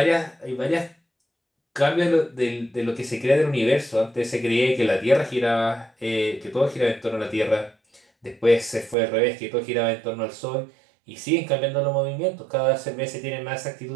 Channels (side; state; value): left; drops out; at 9.0 s